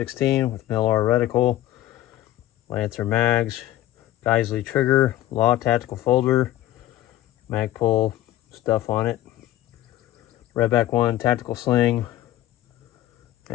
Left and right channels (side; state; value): right; quieter; 14.2 dB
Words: with MLR reticle, Lancer mags, Geissele trigger, Law tactical folder, Magpul stuff on it, Redback One tactical sling,